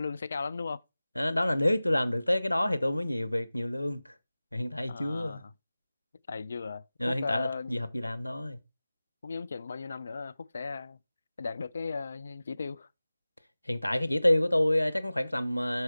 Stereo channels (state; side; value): inverted; both; correlation -0.97